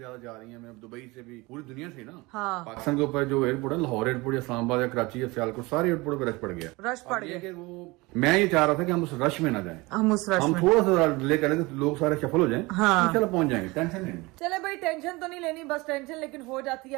जा रही है, मैं दुबई से भी, पूरी दुनिया से ना। हाँ। पाकिस्तान के ऊपर जो एयरपोर्ट है, लाहौर एयरपोर्ट या इस्लामाबाद या कराची या सियालकोट, सारे एयरपोर्ट पे रश पड़ गया। रश पड़ गया कि वो मैं ये चाह रहा था कि हम उस रश में ना जाएं, हम उस रश हम में थोड़ा सा डिले करें तो लोग सारे सफल हो जाएं। हाँ। चलो पहुंच जाएंगे, टेंशन नहीं। चले भाई, टेंशन तो नहीं लेनी, बस टेंशन लेकिन हो जाती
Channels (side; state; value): left; quieter; 23.3 dB